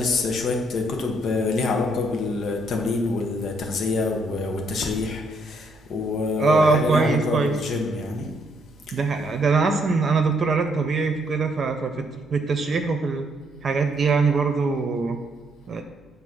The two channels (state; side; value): normal; both; correlation 0.71